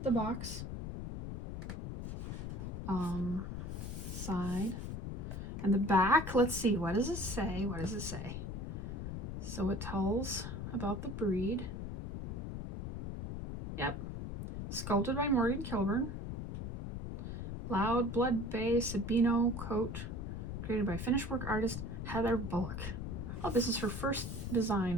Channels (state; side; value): noise; left; rumble, 5 dB below the sound